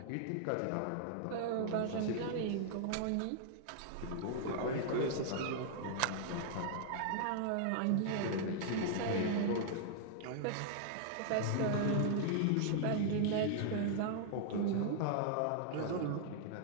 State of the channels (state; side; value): different; both; correlation -0.01